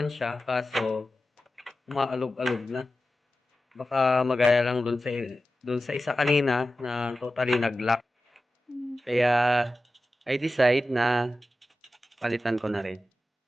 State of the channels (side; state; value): both; normal; correlation 0.94